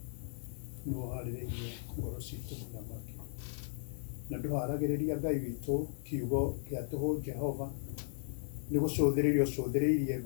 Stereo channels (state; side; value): silent; right; digital silence